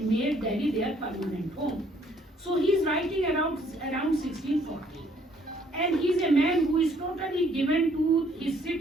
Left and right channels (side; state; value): both; normal; correlation 0.64